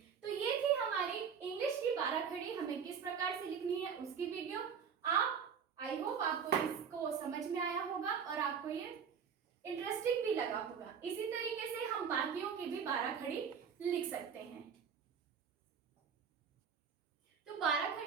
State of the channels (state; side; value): quieter; left; 6.8 dB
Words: तो ये थी हमारी इंग्लिश की 12 खड़ी हमें किस प्रकार से लिखनी है उसकी वीडियो। आप आई होप आपको इसको समझ में आया होगा और आपको ये इंटरेस्टिंग भी लगा होगा। इसी तरीके से हम बाकियों की भी 12 खड़ी लिख सकते हैं। तो 12